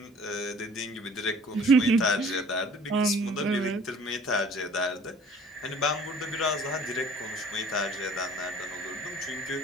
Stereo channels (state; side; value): normal; both; correlation 0.51